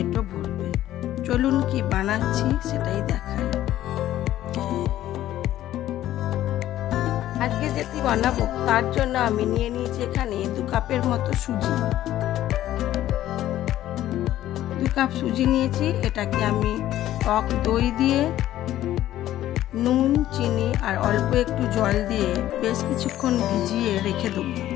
ভরবে। চলুন কি বানাচ্ছি সেটাই দেখাই। আজকে যেটি বানাবো তার জন্য আমি নিয়ে নিয়েছি এখানে 2 কাপের মতো সুজি। 2 কাপ সুজি নিয়েছি। এটাকে আমি টক দই দিয়ে নুন, চিনি আর অল্প একটু জল দিয়ে বেশ কিছুক্ষণ ভিজিয়ে রেখে দেবো।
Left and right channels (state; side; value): quieter; right; 13.3 dB